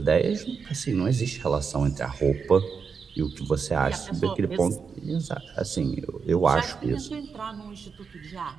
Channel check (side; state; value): left; quieter; 5.8 dB